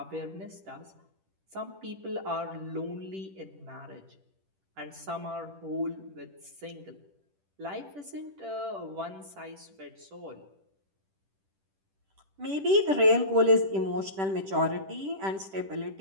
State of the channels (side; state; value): left; late; 10 ms